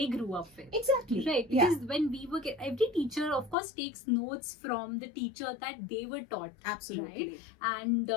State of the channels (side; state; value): right; drops out; at 3.6 s